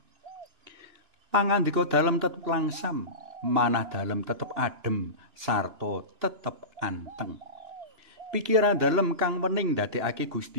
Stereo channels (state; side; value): late; left; 2.9 ms